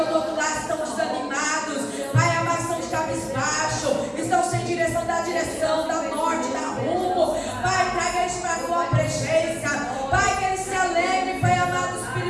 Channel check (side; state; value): both; identical; correlation 1.00